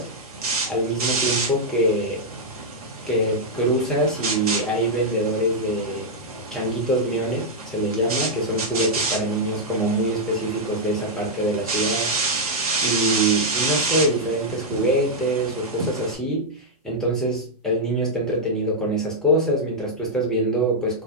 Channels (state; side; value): normal; both; correlation -0.04